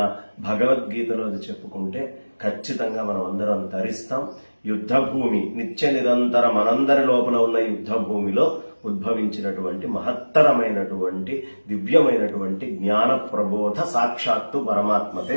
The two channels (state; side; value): inverted; both; correlation -1.00